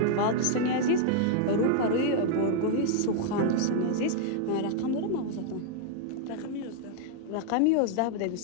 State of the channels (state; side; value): different; both; correlation 0.00